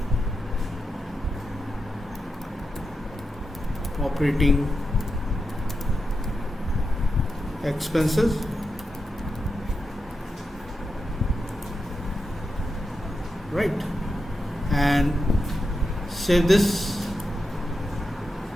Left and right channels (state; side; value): normal; both; correlation 0.88